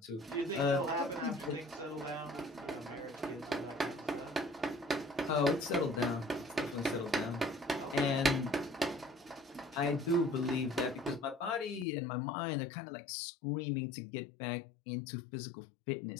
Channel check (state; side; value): drops out; right; at 11.9 s